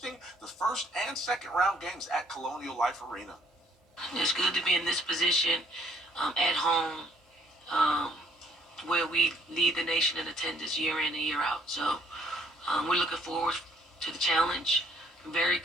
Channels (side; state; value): both; normal; correlation 0.64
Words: the first and second round games at Colonial Life Arena. It's good to be in this position at home, where we lead the nation in attendance year in and year out. So we're looking forward to the challenge. Very